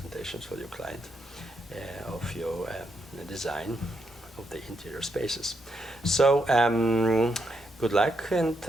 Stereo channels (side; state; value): both; normal; correlation 0.80